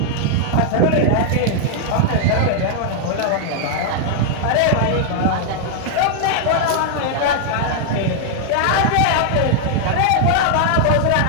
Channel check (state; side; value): different; both; correlation 0.00